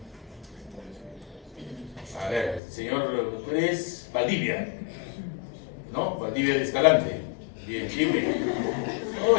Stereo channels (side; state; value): right; drops out; at 2.6 s